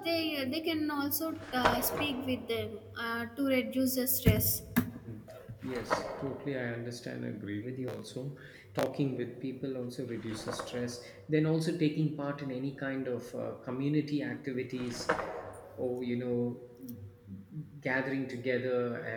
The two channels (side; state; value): both; identical; correlation 1.00